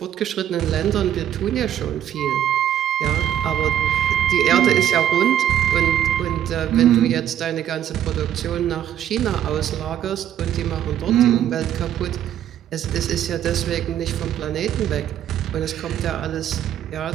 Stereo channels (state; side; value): quieter; left; 10.7 dB